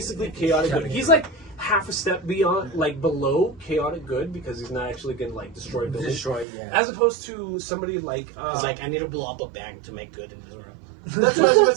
chaotic good. He's like half a step beyond, like, below chaotic good, because he's not actually gonna, like, destroy buildings. As opposed to somebody like it's like, I need to blow up a bank to make good in this world. That's what I was going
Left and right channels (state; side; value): drops out; left; at 6.5 s